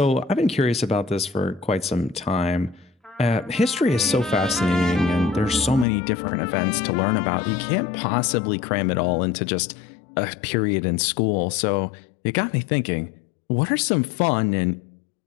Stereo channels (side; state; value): right; drops out; at 5.9 s